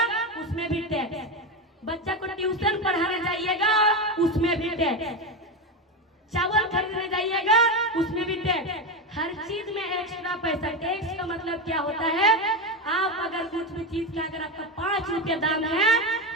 उसमें भी टैक्स। बच्चा को ट्यूशन पढ़ाने जाइएगा, उसमें भी टैक्स। चावल खरीदने जाइएगा, उसमें भी टैक्स। हर चीज में एक्स्ट्रा पैसा। टैक्स का मतलब क्या होता है? आप अगर कुछ भी चीज का अगर आपका 5 रुपया दाम है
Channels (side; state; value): both; normal; correlation 0.15